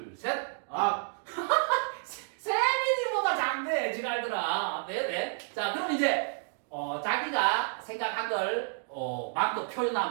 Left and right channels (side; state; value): left; silent; digital silence